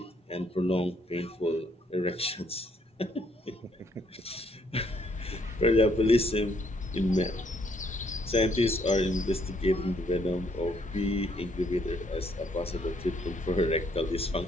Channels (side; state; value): both; normal; correlation 0.69